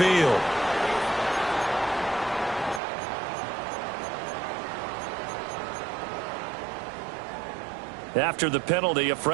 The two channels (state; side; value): drops out; left; at 2.8 s